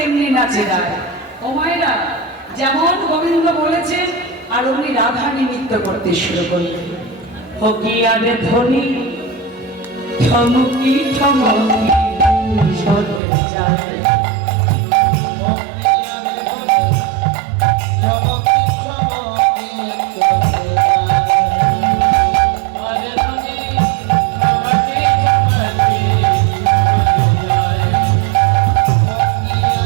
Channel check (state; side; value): drops out; left; at 13.2 s